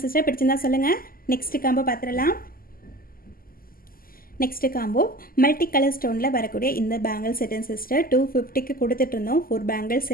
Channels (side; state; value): right; late; 0.42 ms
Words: சிஸ்டர். பிடிச்சிருந்தா சொல்லுங்கள். நெக்ஸ்ட்டு காம்போ பார்த்துடலாம். நெக்ஸ்ட்டு காம்போ மல்டி கலர் ஸ்டோனில் வரக்கூடிய இந்த பேங்கிள் செட்டன் சிஸ்டர். 250க்கு கொடுத்துட்ருந்தோம். 4 பேங்கிள்